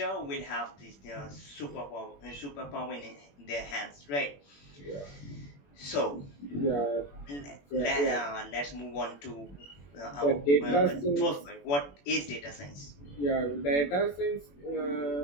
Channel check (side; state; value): right; late; 21 ms